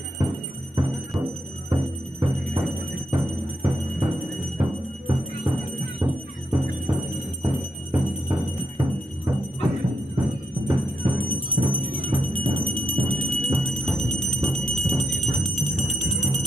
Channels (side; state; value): both; normal; correlation 0.81